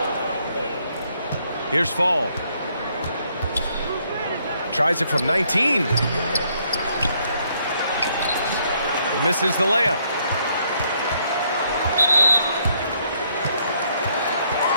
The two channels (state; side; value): inverted; both; correlation -0.70